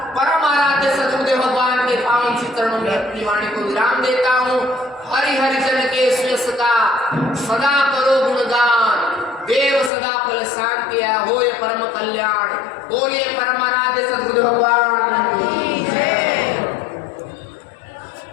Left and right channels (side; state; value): right; drops out; at 9.9 s